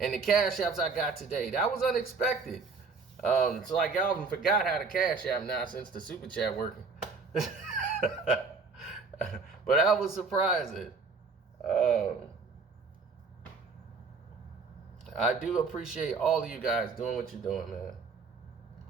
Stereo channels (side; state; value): left; quieter; 4.4 dB